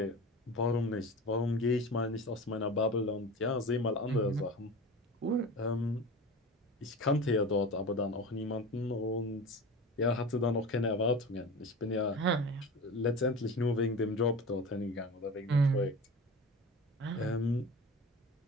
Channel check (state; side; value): normal; both; correlation 0.32